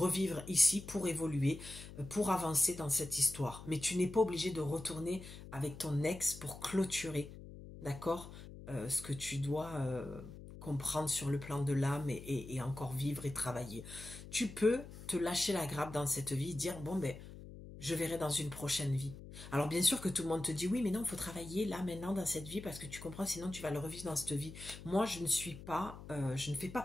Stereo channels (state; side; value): noise; left; hum, 14 dB below the sound